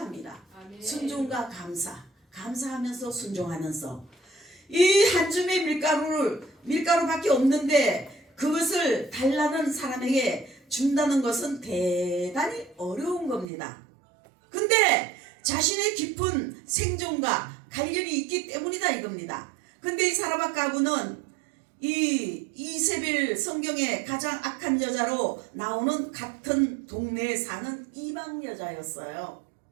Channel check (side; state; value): left; drops out; at 13.5 s